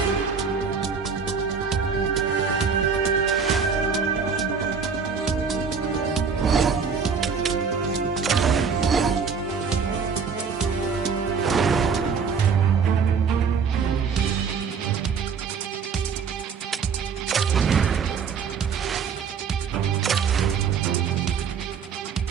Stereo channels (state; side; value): quieter; left; 5.9 dB